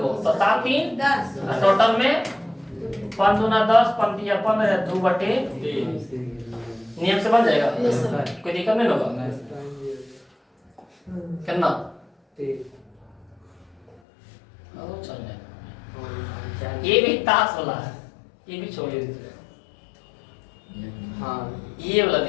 गो तो 7 3 10 टोटल में 5 × 10 पंक्ति या 15 2/3। नियम से बन जाएगा कोई दिक्कत नहीं होगा कितना चल जाएगा। ये भी ताश वाला है ये भी छोड़ दीजिए। हाँ ये वाला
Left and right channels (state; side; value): drops out; right; at 14.0 s